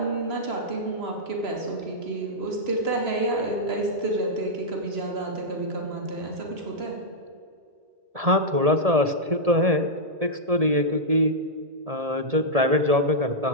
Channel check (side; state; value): left; late; 1.7 ms